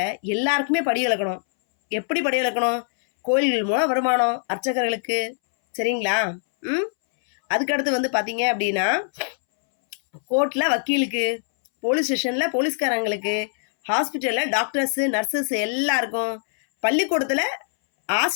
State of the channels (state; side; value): silent; right; 64 dB below the other